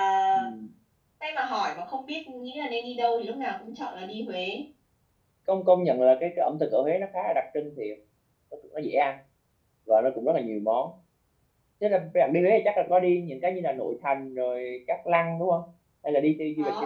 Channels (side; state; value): both; identical; correlation 1.00